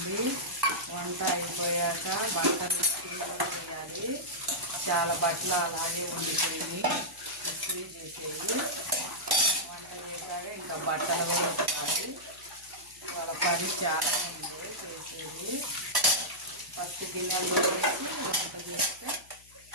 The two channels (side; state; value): left; noise; hum, 27 dB below the sound